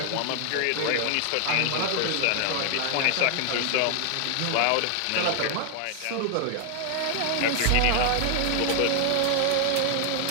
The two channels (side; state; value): both; different; correlation 0.00